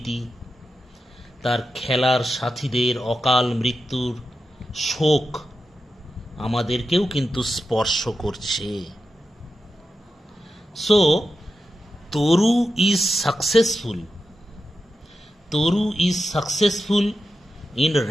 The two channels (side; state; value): both; normal; correlation 0.90